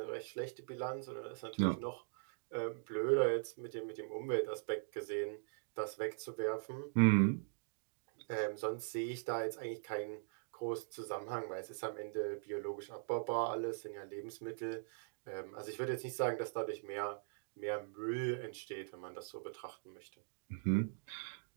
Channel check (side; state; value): left; silent; digital silence